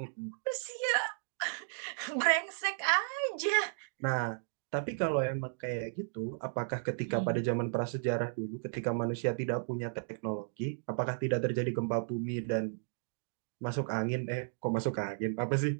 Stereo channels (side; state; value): left; silent; digital silence